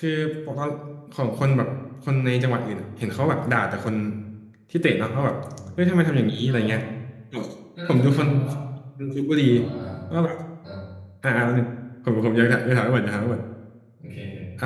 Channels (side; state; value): both; identical; correlation 1.00